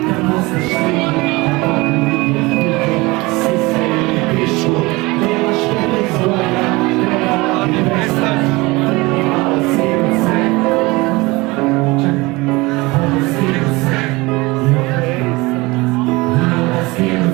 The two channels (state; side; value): quieter; left; 22.9 dB